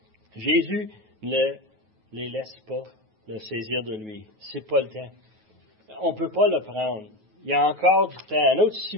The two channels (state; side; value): late; left; 9.3 ms